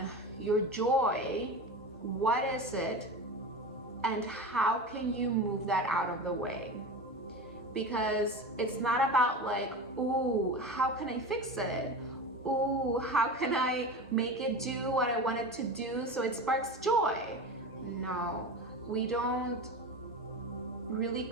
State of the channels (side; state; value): both; normal; correlation 0.28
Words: your joy, what is it? And how can you move that out of the way? Because it's not about ooh, how can I fix it? Ooh, how can I make it do what I want it to do so it sparks joy? No, we don't really